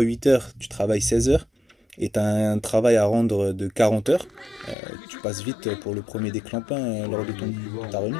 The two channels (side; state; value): right; drops out; at 4.8 s